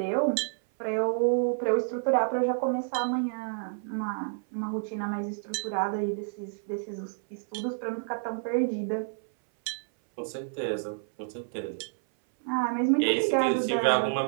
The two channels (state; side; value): silent; left; 58 dB below the other